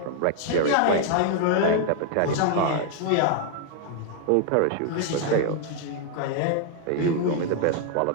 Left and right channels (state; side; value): different; both; correlation 0.00